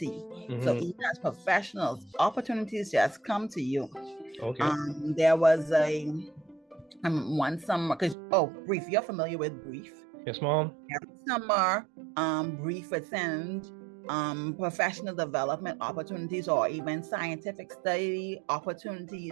So even as professionals, opportunities just come to you. Okay. There was one summer, Brief, you're familiar with Brief? Yes, Mom. Every summer, Brief would send professional development opportunities or even scientific study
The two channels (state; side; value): drops out; left; at 8.2 s